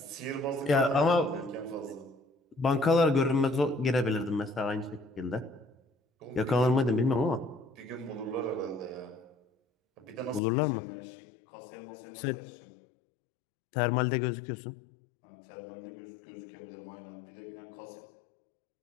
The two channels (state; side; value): drops out; right; at 10.4 s